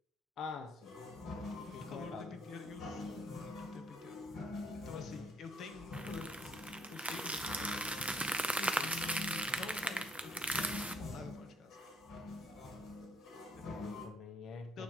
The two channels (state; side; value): normal; both; correlation 0.66